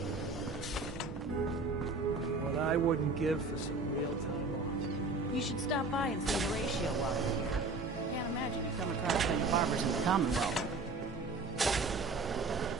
What I wouldn't give for some real time off. You should stop by and see Horatio while you're here. Can't imagine you come across many barbers in the Commonwealth.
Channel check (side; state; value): left; quieter; 3.6 dB